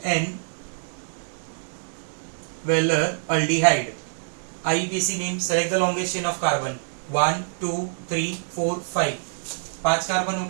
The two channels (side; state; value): left; silent; digital silence